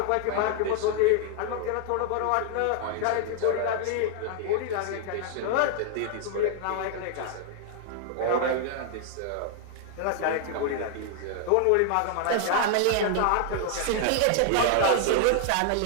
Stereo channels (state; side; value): different; both; correlation 0.00